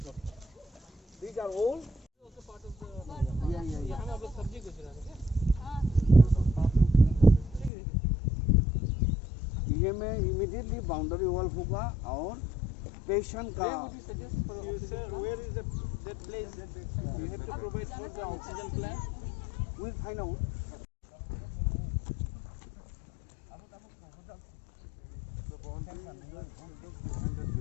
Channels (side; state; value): right; drops out; at 7.7 s